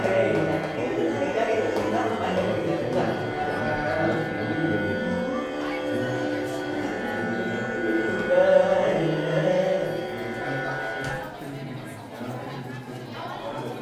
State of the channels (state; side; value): identical; both; correlation 1.00